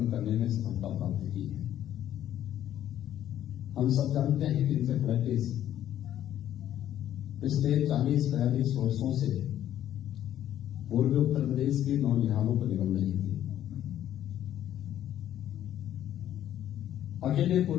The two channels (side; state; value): right; quieter; 11.5 dB